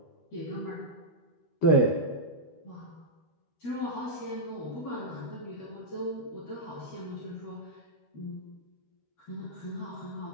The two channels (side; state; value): right; late; 13 ms